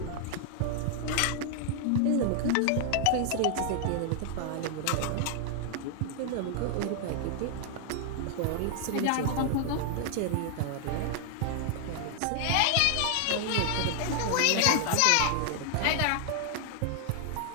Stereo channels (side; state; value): both; different; correlation 0.00